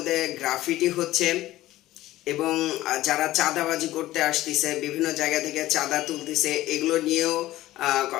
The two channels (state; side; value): quieter; right; 15.9 dB